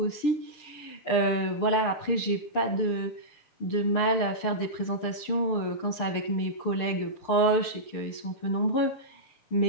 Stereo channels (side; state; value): right; late; 6.7 ms